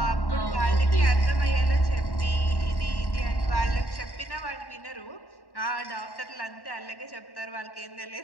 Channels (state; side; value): late; right; 1.1 ms